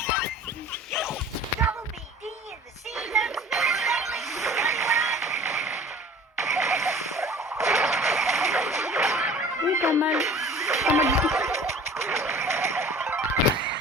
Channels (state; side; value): normal; both; correlation 0.45